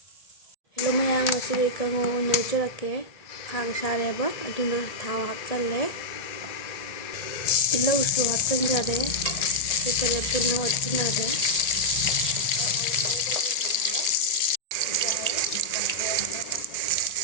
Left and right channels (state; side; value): late; right; 1.8 ms